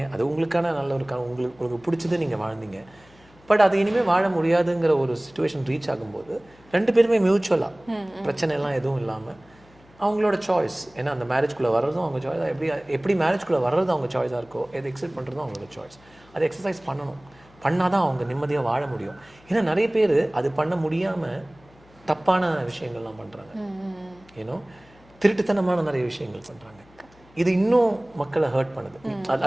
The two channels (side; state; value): left; noise; hum, 27 dB below the sound